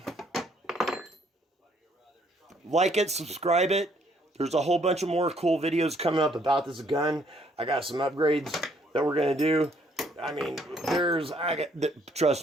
like it, subscribe it. There's a whole bunch of more cool videos coming up about this gun. I got some upgrades that we're gonna do. I mean, trust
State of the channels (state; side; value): normal; both; correlation 0.66